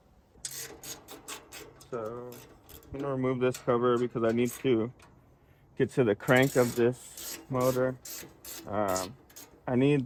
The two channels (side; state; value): both; identical; correlation 1.00